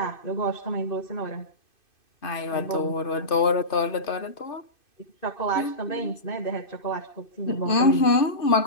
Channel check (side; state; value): right; late; 2.5 ms